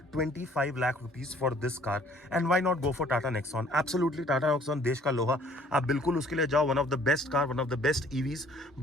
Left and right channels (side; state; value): both; normal; correlation 0.58